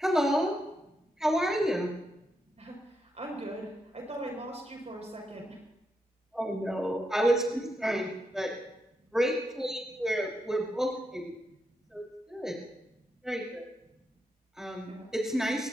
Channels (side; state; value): both; normal; correlation 0.83